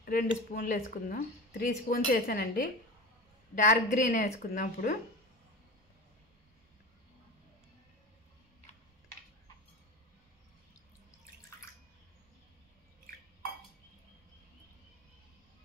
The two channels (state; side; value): normal; both; correlation 0.29